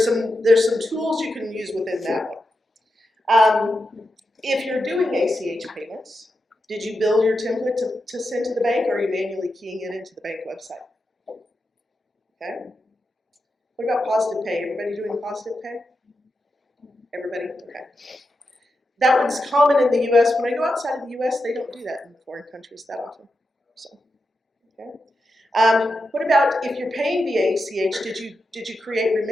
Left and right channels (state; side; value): normal; both; correlation 0.88